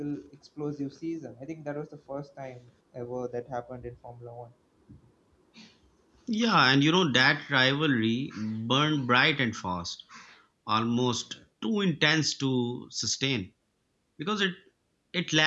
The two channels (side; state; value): both; identical; correlation 1.00